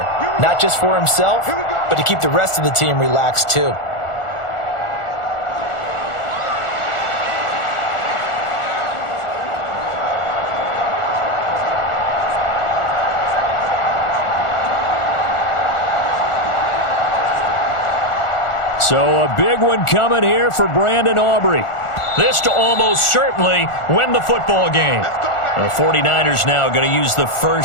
not just for himself, but to keep the rest of the team relaxed too. So a big one coming here for Brandon Aubrey. This to almost certainly win the football game. The 49ers now going to use the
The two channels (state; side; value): late; right; 1.4 ms